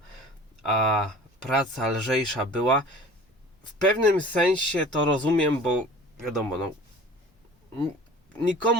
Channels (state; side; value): normal; both; correlation 0.43